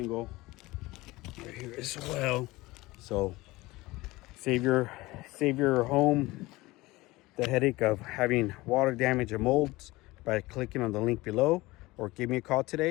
right here as well. So save your home the headache of having water damage and molds by clicking on the link below, or give me a call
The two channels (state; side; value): quieter; right; 20.4 dB